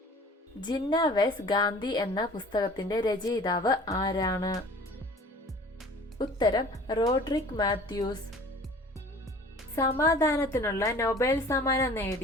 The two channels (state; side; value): normal; both; correlation 0.46